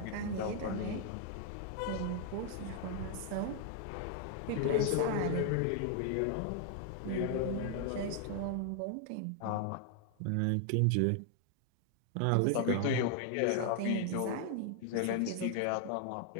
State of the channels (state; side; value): different; both; correlation 0.00